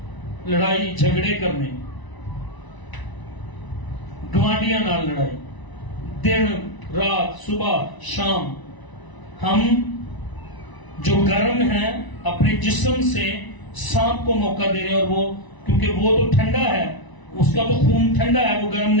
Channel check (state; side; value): late; right; 1.0 ms